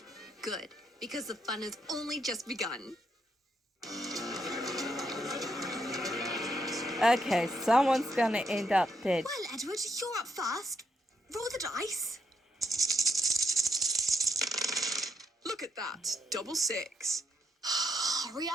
Good, because the fun has only just begun. Okay, someone's gonna end up dead. Well, Edward, you're up first. Roll the dice. Look at that. Double 6. Hurry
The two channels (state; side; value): normal; both; correlation 0.77